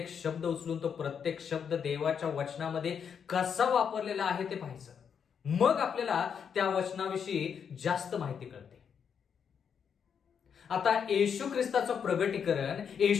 शब्द उचलून तो प्रत्येक शब्द देवाच्या वचनामध्ये कसा वापरलेला आहे ते पाहायचं. मग आपल्याला त्या वचनाविषयी जास्त माहिती कळते. आता येशू ख्रिस्ताचं प्रगटीकरण,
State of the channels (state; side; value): quieter; right; 7.3 dB